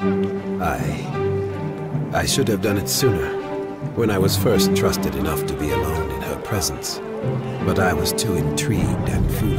I should have done it sooner, when I was first trusted enough to be alone in her presence. But I was too intrigued and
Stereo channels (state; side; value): identical; both; correlation 1.00